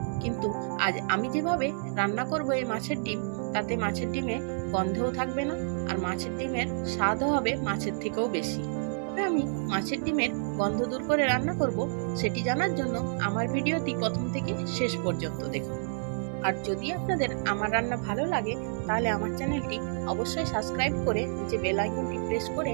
কিন্তু আজ আমি যেভাবে রান্না করব এই মাছের ডিম, তাতে মাছের ডিমে গন্ধও থাকবে না আর মাছের ডিমের স্বাদও হবে মাছের থেকেও বেশি। তবে আমি মাছের ডিমের গন্ধ দূর করে রান্না করব, সেটি জানার জন্য আমার ভিডিওটি প্রথম থেকে শেষ পর্যন্ত দেখুন। আর যদি আপনাদের আমার রান্না ভালো লাগে তাহলে আমার চ্যানেলটি অবশ্যই সাবস্ক্রাইব করে নিচে বেল আইকনটি প্রেস করে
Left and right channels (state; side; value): silent; left; 58 dB below the other